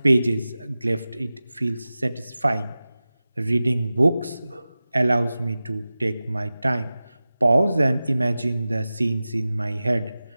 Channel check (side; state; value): both; inverted; correlation -0.96